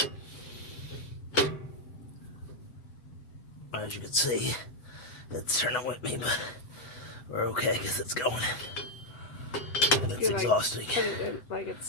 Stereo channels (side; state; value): right; late; 7.9 ms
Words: As you can see, it's turning with me, but we're okay because it's going. And it's exhausting. Put it in, like